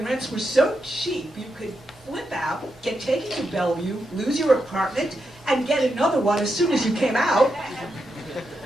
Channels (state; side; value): normal; both; correlation 0.85